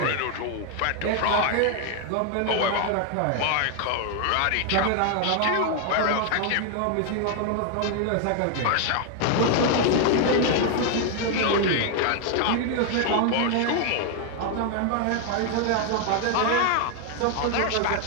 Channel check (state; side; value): different; both; correlation 0.00